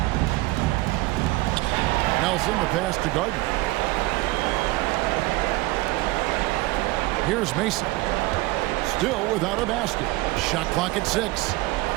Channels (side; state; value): left; quieter; 20.5 dB